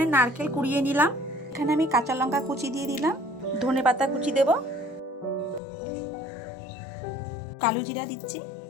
নারকেল কুড়িয়ে নিলাম। এখানে আমি কাঁচা লঙ্কা কুচি দিয়ে দিলাম, ধনেপাতা কুচি দেব, কালো জিরা দিচ্ছি,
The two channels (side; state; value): right; drops out; at 5.6 s